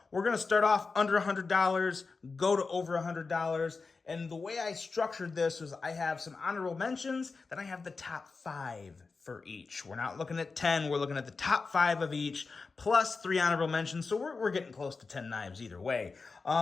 We're going to start off under $100, go to over $100. And the way I structured this was I have some honorable mentions, then I have the top 5 for each. We're not looking at 10, we're looking at the top 5 of each, plus 3 honorable mentions, so we're getting close to 10 knives either way.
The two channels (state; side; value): quieter; right; 4.3 dB